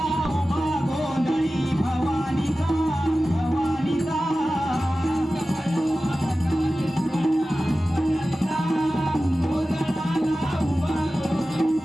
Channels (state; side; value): normal; both; correlation 0.95